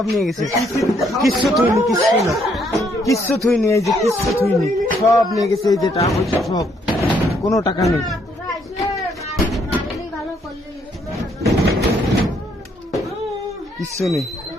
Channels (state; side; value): normal; both; correlation 0.70